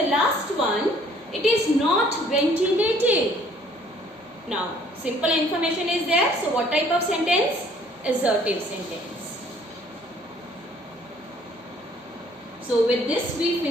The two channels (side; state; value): both; normal; correlation 0.59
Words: last one, it is not ventilated. Now, simple information is there. So what type of sentence? Assertive sentence. So with this we